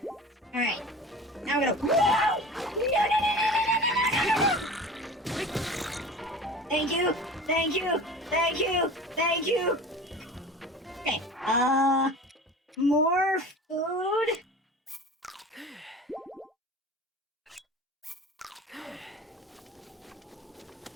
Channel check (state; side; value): normal; both; correlation 0.37